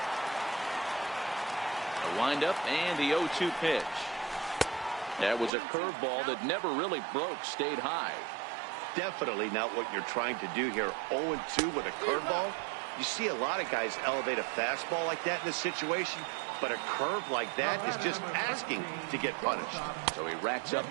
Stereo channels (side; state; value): left; drops out; at 5.5 s